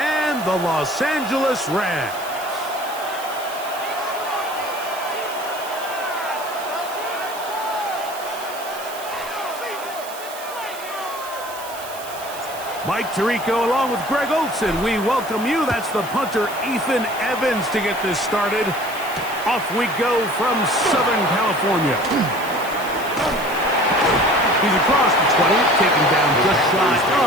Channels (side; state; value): right; noise; hiss, 14 dB below the sound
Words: the Los Angeles Rams. Mike Tirico along with Greg Olson. We welcome you. That's the punter, Ethan Evans, to get this started. Off we go from Southern California. He's across the 20, taken down just shy